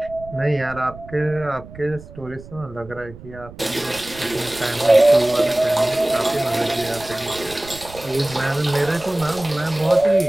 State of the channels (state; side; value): noise; right; rumble, 17 dB below the sound